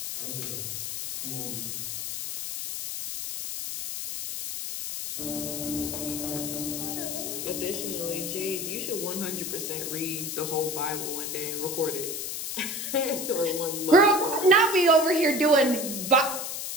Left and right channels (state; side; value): noise; left; hiss, 5 dB below the sound